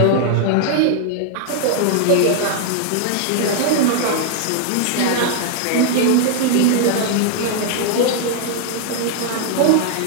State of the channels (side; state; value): both; different; correlation 0.00